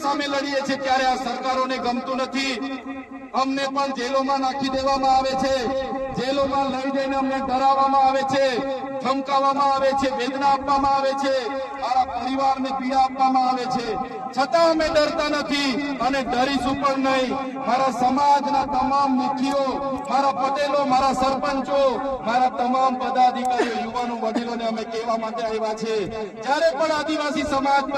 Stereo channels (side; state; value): both; identical; correlation 1.00